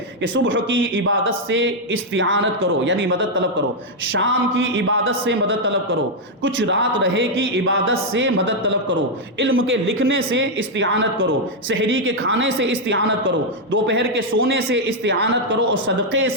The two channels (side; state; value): both; normal; correlation -0.01